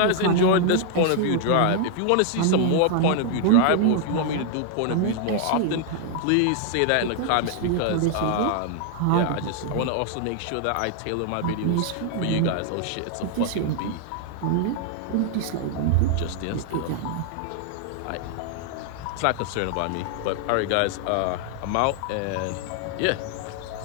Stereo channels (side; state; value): both; different; correlation 0.00